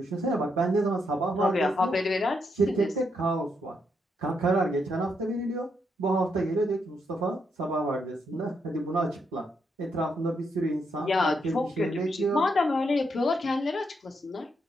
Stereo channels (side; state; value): both; normal; correlation 0.79